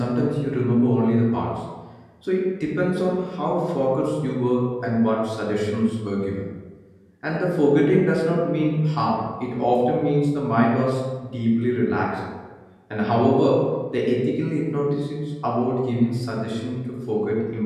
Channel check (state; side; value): identical; both; correlation 1.00